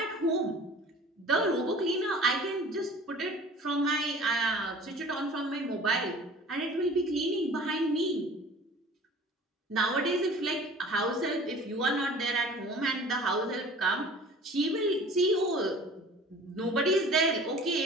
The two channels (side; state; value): both; normal; correlation 0.45